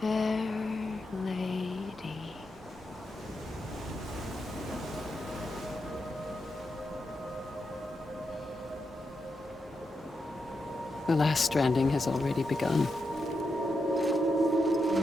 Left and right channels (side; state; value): both; normal; correlation 0.86